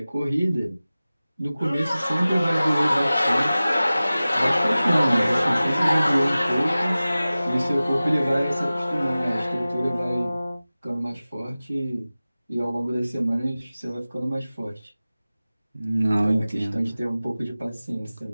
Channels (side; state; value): both; inverted; correlation -0.97